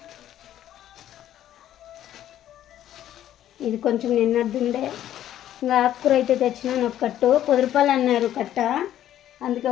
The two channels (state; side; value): quieter; right; 11.9 dB